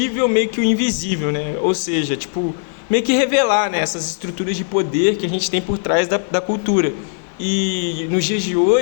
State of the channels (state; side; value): silent; right; 56 dB below the other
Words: meio que o invisível, né? Ou seja, meio que revelar, né, essas estruturas de poder que a gente tem por trás da cultura. E nos dias de